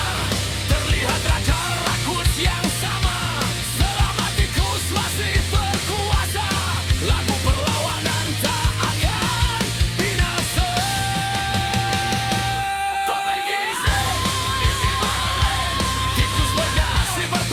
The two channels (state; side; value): identical; both; correlation 1.00